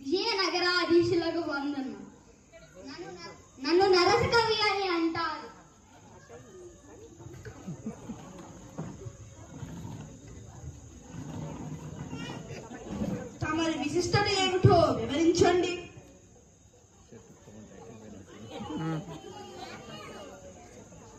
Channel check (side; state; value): both; identical; correlation 1.00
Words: విజయనగరాధీశులకు వందనం. నన్ను నరసకవి అని అంటారు. తమరి విశిష్టత ఏమిటో వివరించండి.